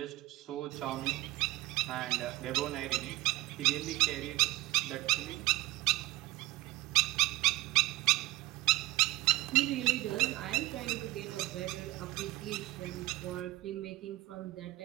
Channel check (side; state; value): left; quieter; 18.6 dB